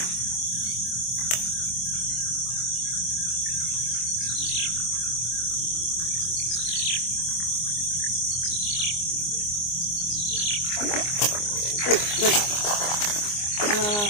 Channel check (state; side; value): late; right; 24 ms